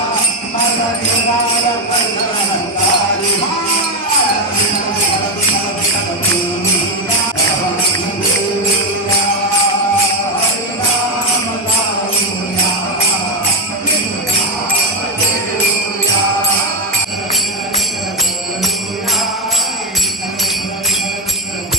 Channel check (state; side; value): normal; both; correlation 0.08